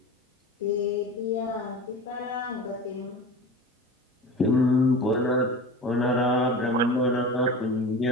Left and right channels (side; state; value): both; normal; correlation 0.33